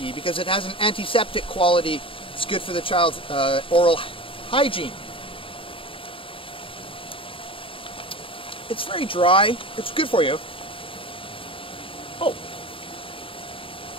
because it has an antiseptic quality. It's good for the child's oral hygiene. It's very dry. It's good for you. Oh.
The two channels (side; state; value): right; late; 0.26 ms